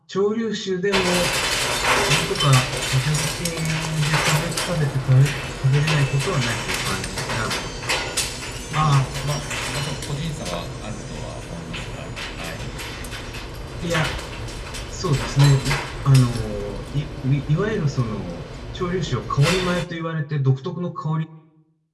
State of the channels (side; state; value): both; identical; correlation 1.00